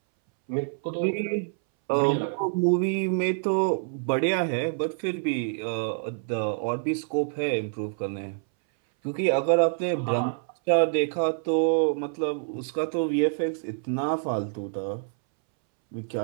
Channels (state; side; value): silent; left; 60 dB below the other